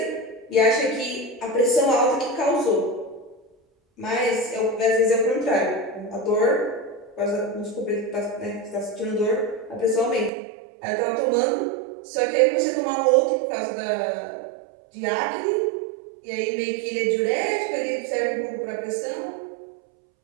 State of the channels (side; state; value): left; drops out; at 10.3 s